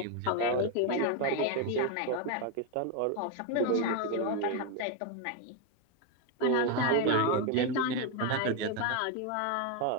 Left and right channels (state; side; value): different; both; correlation 0.02